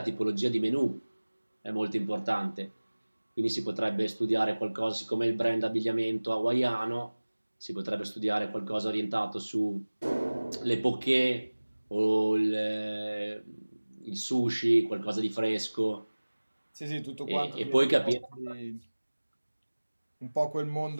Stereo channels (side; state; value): both; inverted; correlation -1.00